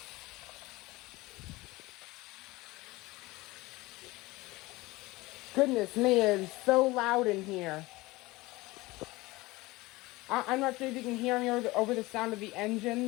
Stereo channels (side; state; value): right; quieter; 20.8 dB